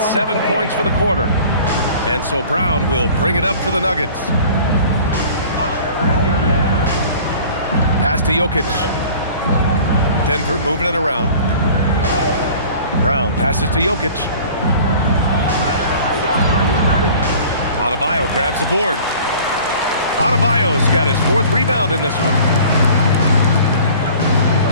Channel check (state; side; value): inverted; both; correlation -0.46